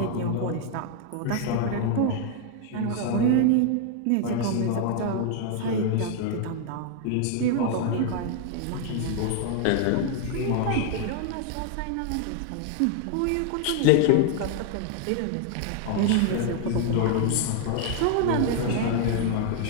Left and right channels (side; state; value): both; different; correlation 0.00